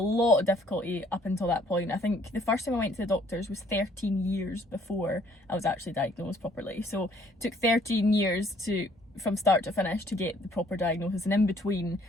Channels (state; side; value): normal; both; correlation 0.62